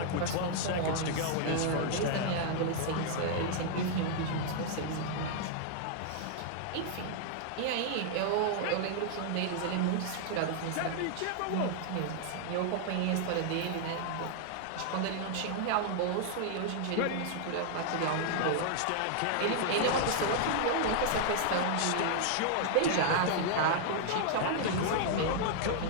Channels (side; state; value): both; different; correlation -0.01